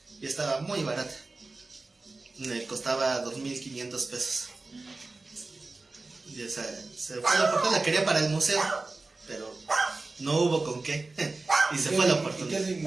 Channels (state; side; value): quieter; left; 3.4 dB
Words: Y estaba muy barata. Me costaba 2,500 pesos. Y esa se fue la oportunidad, la quería para el museo, pero no hubo con qué. Y se fue la oportunidad. ¿Y qué